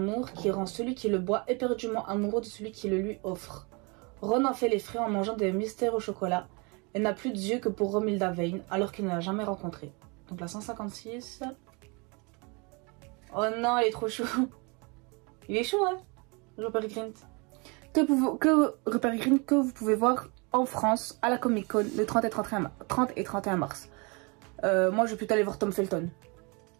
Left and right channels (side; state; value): left; quieter; 30.5 dB